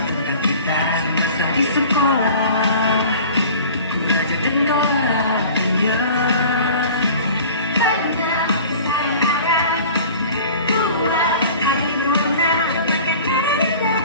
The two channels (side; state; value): both; inverted; correlation -0.43